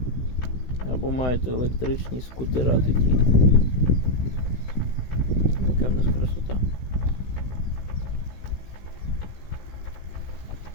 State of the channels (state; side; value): late; right; 16 ms